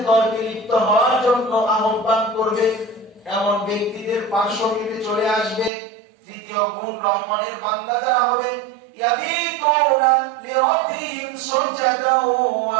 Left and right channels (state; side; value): drops out; left; at 5.7 s